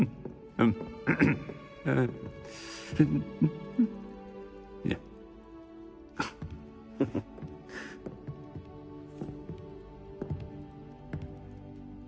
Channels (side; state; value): both; identical; correlation 1.00